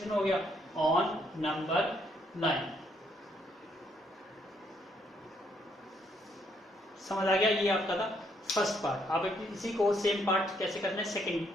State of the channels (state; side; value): normal; both; correlation 0.71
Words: हो गया ऑन नंबर लाइन। समझ आ गया, ये आपका था फर्स्ट पार्ट। आप इसी को सेम पार्ट कैसे करना है सेकंड